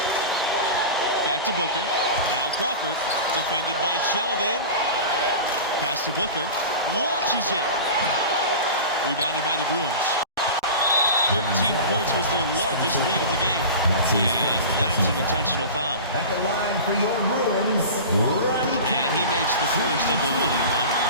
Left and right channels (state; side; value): inverted; both; correlation -0.32